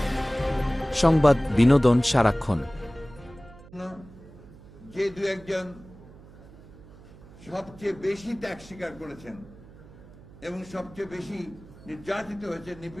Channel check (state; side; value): noise; right; hum, 21 dB below the sound